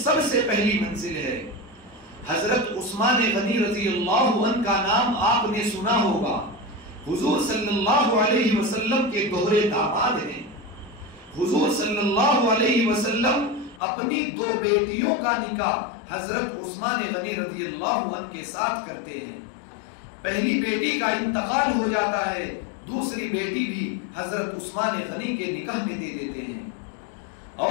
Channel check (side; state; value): right; drops out; at 13.8 s